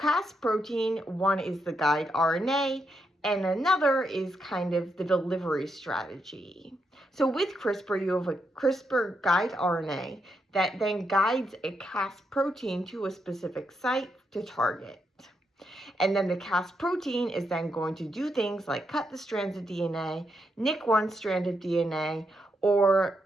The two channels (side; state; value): both; normal; correlation 0.81